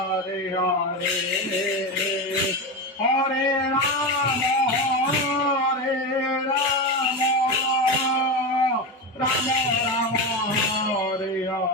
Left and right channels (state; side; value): normal; both; correlation 0.18